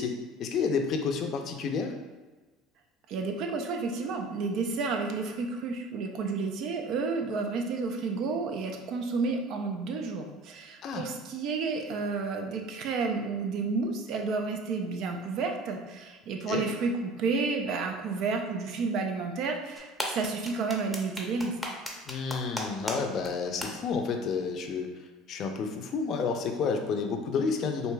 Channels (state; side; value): normal; both; correlation 0.43